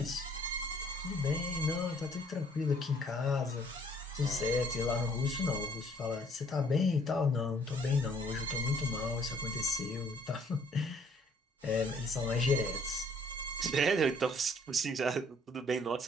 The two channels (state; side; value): normal; both; correlation 0.61